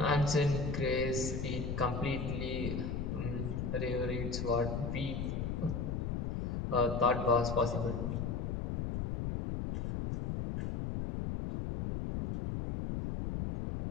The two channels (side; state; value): left; noise; rumble, 2 dB below the sound